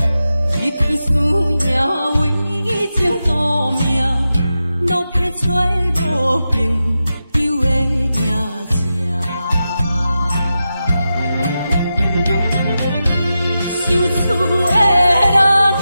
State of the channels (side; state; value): both; inverted; correlation -0.91